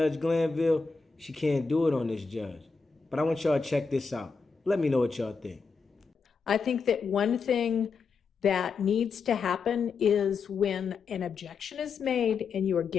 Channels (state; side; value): quieter; right; 5.0 dB